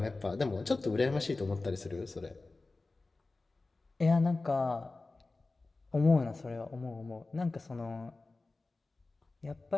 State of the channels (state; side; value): quieter; right; 3.4 dB